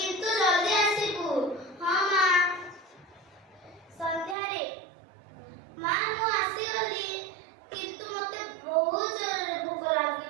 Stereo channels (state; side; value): drops out; left; at 4.4 s